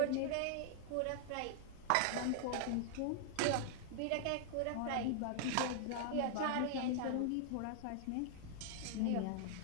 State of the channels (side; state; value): both; different; correlation 0.00